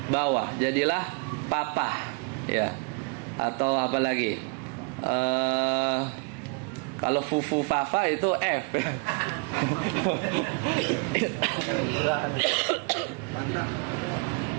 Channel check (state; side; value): quieter; left; 33.6 dB